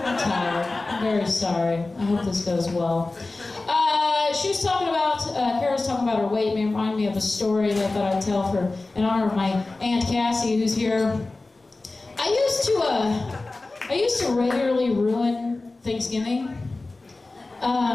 tired. I'm very sorry. I hope this goes well. She was talking about, Kara was talking about her weight. It reminded me of a story that I thought I'd tell for in honor of my Aunt Cassie, who's here. I used to regularly ruin Thanksgiving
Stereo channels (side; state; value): right; quieter; 3.3 dB